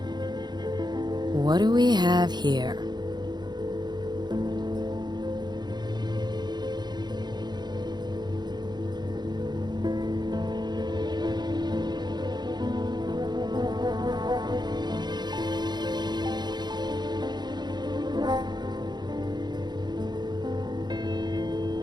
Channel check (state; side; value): late; left; 0.21 ms